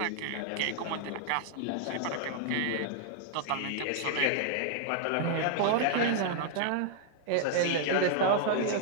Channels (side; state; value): both; different; correlation -0.01